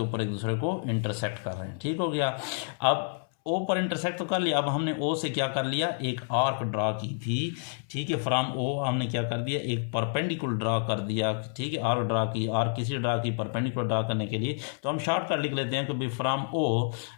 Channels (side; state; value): right; silent; 59 dB below the other